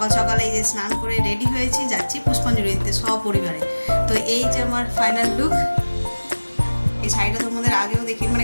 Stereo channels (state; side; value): inverted; both; correlation -1.00